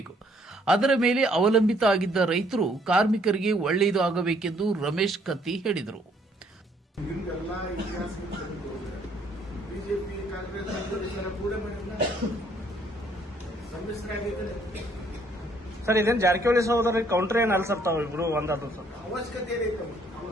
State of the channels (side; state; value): both; normal; correlation 0.65